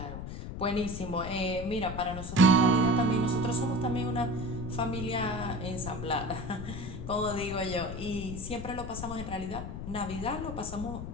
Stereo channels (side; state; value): left; noise; rumble, 7 dB below the sound